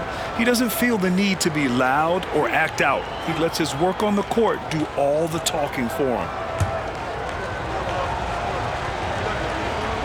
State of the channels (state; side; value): identical; both; correlation 1.00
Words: He doesn't feel the need to be loud or act out. He lets his work on the court do all the talking for him.